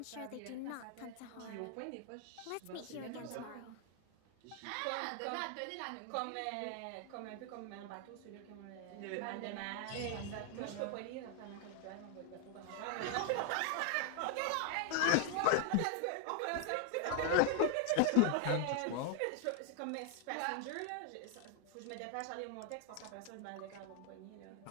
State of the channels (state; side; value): different; both; correlation 0.00